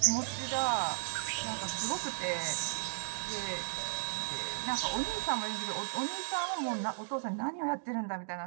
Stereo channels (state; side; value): silent; left; digital silence